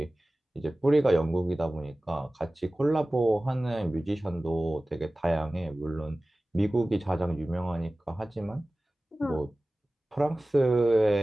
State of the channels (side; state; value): both; normal; correlation 0.97